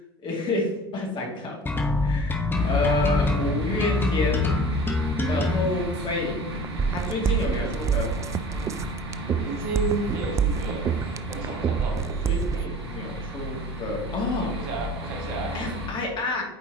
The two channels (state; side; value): normal; both; correlation 0.42